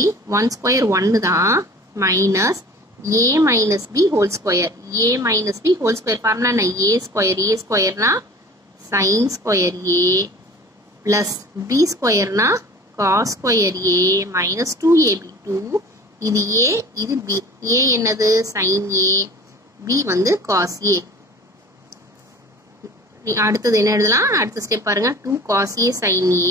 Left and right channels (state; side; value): normal; both; correlation 0.43